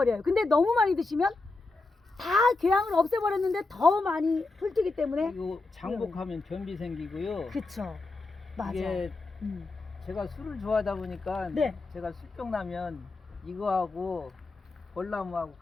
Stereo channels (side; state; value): right; quieter; 3.5 dB